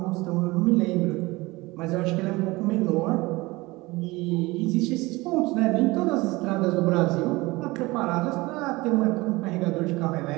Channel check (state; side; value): quieter; left; 21.8 dB